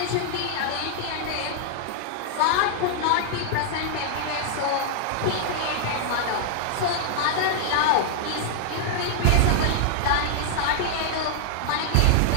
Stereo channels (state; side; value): different; both; correlation -0.01